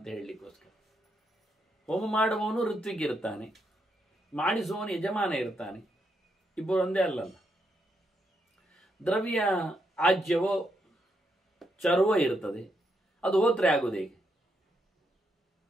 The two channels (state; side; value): normal; both; correlation 0.79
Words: ಹೇಳಲಿಕ್ಕೋಸ್ಕರ. ಹೋಮ ಮಾಡುವವನು ಋತ್ವಿಗಿರ್ತಾನೆ, ಮಾಡಿಸುವವನು ಯಜಮಾನ ಇರ್ತಾನೆ, ಇಬ್ಬರು ಒಂದೇ ಅಲ್ಲಲ್ಲ. ದ್ರವ್ಯ ಆಜ್ಯವೋ ಚರ್ವೋ ಇರ್ತದೆ, ಅದು ಹೋತ್ರೆ ಆಗುವುದು ಹೇಗೆ?